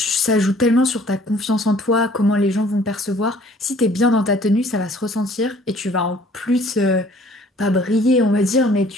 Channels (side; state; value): both; normal; correlation 0.56